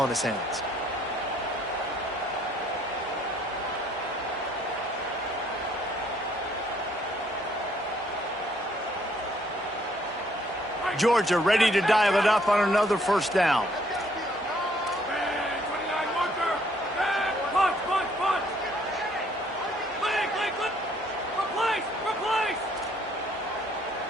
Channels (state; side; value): normal; both; correlation 0.65